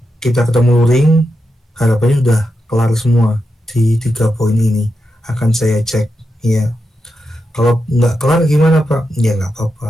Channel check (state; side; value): normal; both; correlation 0.87